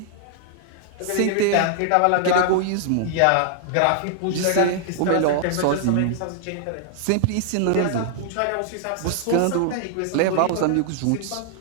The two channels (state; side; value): different; both; correlation -0.01